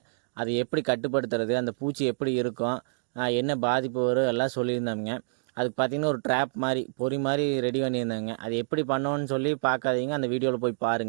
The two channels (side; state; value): left; silent; digital silence